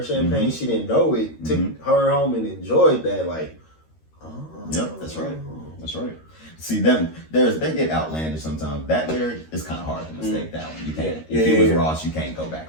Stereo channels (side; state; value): right; late; 13 ms